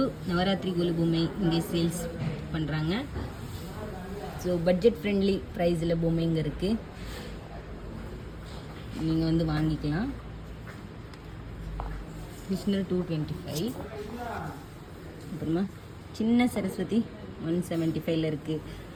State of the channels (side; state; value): both; identical; correlation 1.00